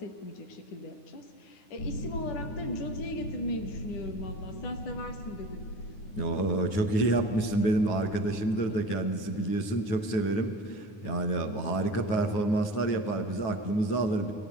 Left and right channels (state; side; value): late; right; 9.7 ms